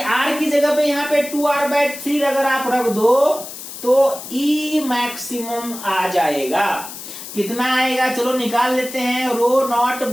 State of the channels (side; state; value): left; noise; hiss, 11 dB below the sound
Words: की जगह पे यहाँ पे 2r/3 अगर आप रख दो तो ई मैक्सिमम आ जाएगा। कितना आएगा, चलो निकाल लेते हैं, रो नॉट